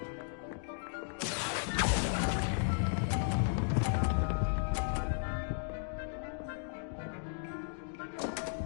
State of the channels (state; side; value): silent; right; digital silence